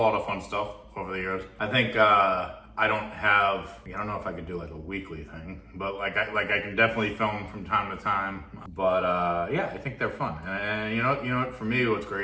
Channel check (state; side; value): identical; both; correlation 1.00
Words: of fun stuff over the years. I think I don't know if I could do like a weekly thing, but like I can definitely film from time to time. But yeah, I think they're fun. And you know, for me, what's